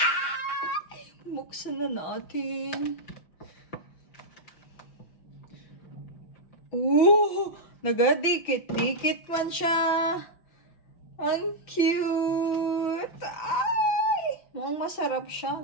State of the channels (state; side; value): late; right; 5.6 ms